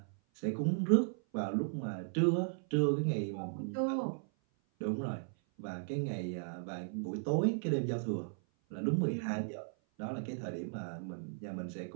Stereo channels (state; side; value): silent; left; 54 dB below the other